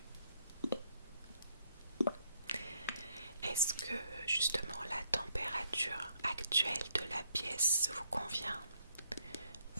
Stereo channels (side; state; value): both; inverted; correlation -0.72